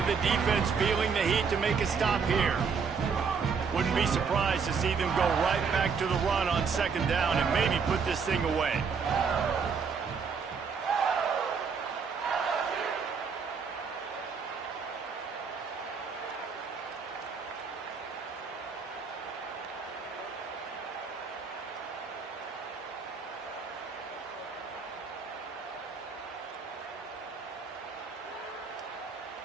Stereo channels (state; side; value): quieter; left; 5.7 dB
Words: the defense feeling the heat to make a stop here. Wouldn't be surprised to see them go right back to the run on 2nd down and maybe put this thing away.